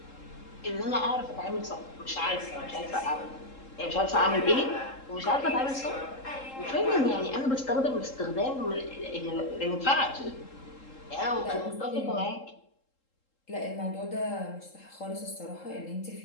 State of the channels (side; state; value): right; late; 3.7 ms